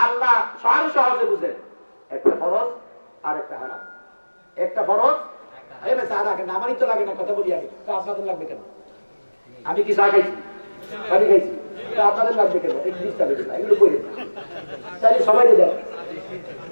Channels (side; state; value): both; inverted; correlation -1.00